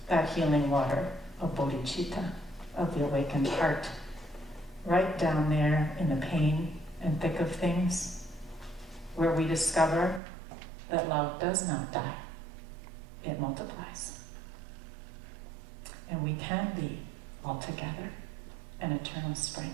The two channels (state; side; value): drops out; left; at 10.2 s